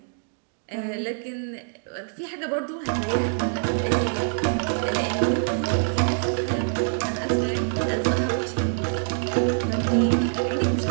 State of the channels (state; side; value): silent; left; digital silence